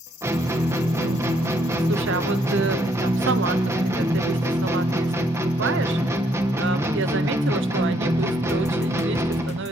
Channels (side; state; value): both; normal; correlation 0.70